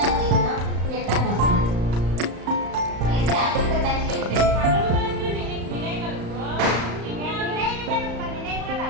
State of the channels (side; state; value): left; late; 35 ms